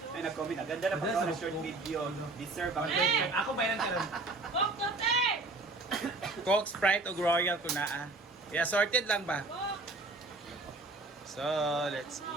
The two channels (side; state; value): left; quieter; 3.1 dB